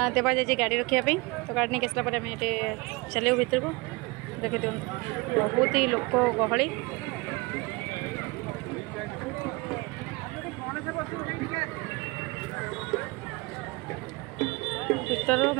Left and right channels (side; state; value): left; quieter; 25.2 dB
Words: देवा जाए गाड़ी रखापी तो गाड़ी नहीं आसला आम ये चलो भीतर को देखी दिखाँ बहुत ही लोक गहली भीतर